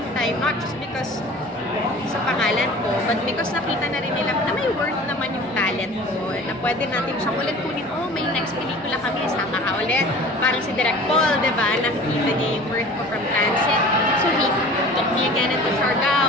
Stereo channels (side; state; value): both; normal; correlation 0.42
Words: time, not just because sa pangalan ko, but because nakita na rin nila na may worth naman yung talent ko, na pwede natin siyang ulit kunin, may next pelikula kami, sama ka ulit. Parang si Direk Paul, diba? Nakikita niya yung worth ko from Transit. So he took me again into